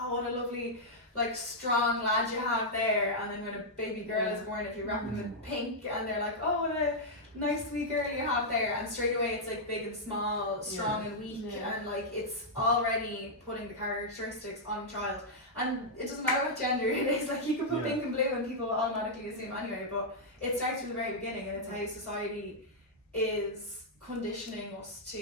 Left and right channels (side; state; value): both; normal; correlation -0.06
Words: what a lovely like strong lad you have there. And then when a baby girl is born, if you wrap them in pink, and they're like, oh, what a nice sweet girl you have there. And straight away it's like big and small, strong and weak, and like it's already putting the characteristics on a child. And it doesn't matter what gender it is, like you can put pink and blue and people will automatically assume anyway, but it starts from the very beginning, and it's how society is conditioning us